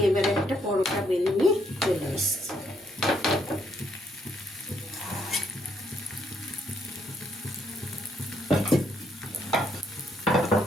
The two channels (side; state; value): both; normal; correlation 0.72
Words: এবারে একটা পরোটা বেলে নিয়ে চলে এসেছি।